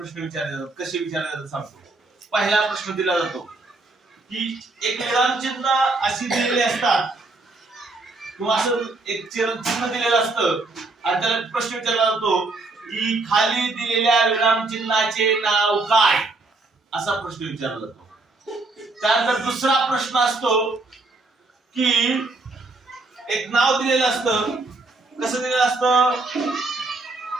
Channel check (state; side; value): quieter; left; 3.3 dB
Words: विचारले जातात. कसे विचारले जातात सांगतो. पहिला प्रश्न दिला जातो की एक विरामचिन्ह अशी दिलेली असतात किंवा असं एक चिन्ह दिलेलं असतं आणि त्याला प्रश्न विचारला जातो की खाली दिलेल्या विरामचिन्हाचे नाव काय, असा प्रश्न विचारला जातो. त्यानंतर दुसरा प्रश्न असतो की एक नाव दिलेलं असतं. कसं दिलेलं असतं?